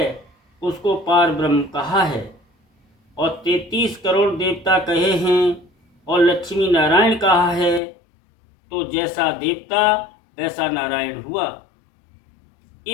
उसको पार ब्रह्म कहा है। और 33 करोड़ देवता कहे हैं और लक्ष्मी नारायण कहा है, तो जैसा देवता वैसा नारायण हुआ।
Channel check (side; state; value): right; drops out; at 7.8 s